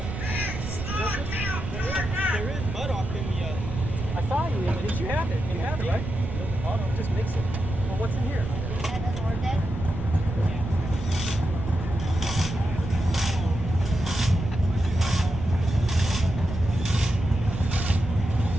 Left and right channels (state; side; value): noise; right; rumble, 6 dB below the sound